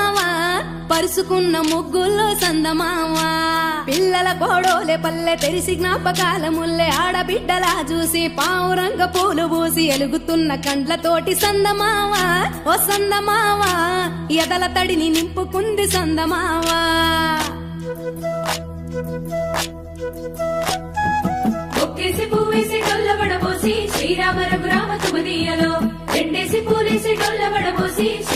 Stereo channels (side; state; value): both; identical; correlation 1.00